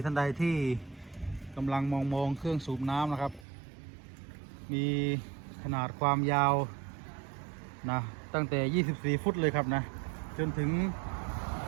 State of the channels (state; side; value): drops out; left; at 3.5 s